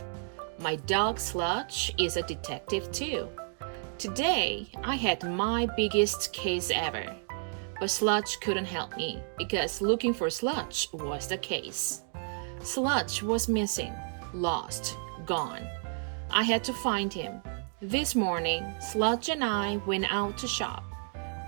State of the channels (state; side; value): silent; left; 57 dB below the other